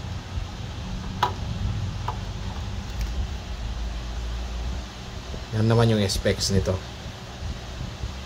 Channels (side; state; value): both; identical; correlation 1.00